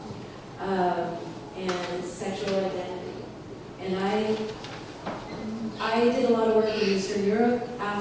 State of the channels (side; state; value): both; identical; correlation 1.00